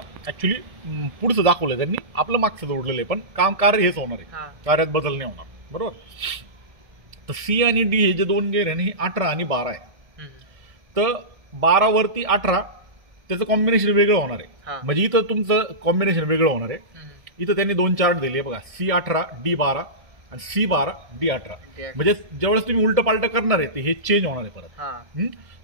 ऍक्च्युली पुढचं दाखवलंय त्यांनी, आपलं मागचं जोडलेलं आहे, पण कार्य हेच होणार आहे, कार्यात बदल नाही होणार, बरोबर. तर C आणि D हे जे 2 गेअर आहे ना, हे 18 आणि 12 आहे. तर 12 वरती 18 त्याचं कॉम्बिनेशन वेगळं होणार आहे. म्हणजे इथं तुमचं कॉम्बिनेशन वेगळं होणार आहे. इथं त्यांनी 2 चार्ट दिले बघा, C18 D12 आणि C12 D18. म्हणजे ज्यावेळेस तुम्ही उलट पालट करणार आहे ते हे चेंज होणार आहे परत.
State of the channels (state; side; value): late; left; 1.7 ms